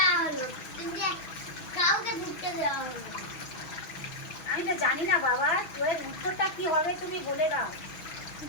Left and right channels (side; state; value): right; late; 6.2 ms